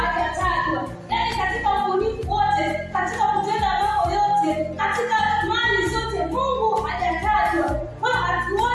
Yaani katika ubunifu wote, katika kutenda mambo yote, katika mali zote, Mungu hajatajwa. Kwa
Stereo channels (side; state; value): both; identical; correlation 1.00